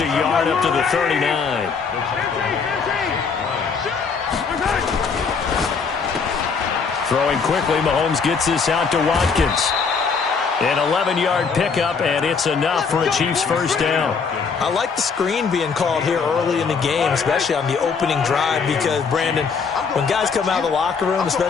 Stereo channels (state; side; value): quieter; right; 5.4 dB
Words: a yard up to the 39. Throwing quickly, Mahomes gets this out to Watkins. An 11-yard pickup, and it's enough for a Chiefs first down. I like the screen being called here early in the game, especially on the opening drive, because, Brandon, when guys come out of the locker room,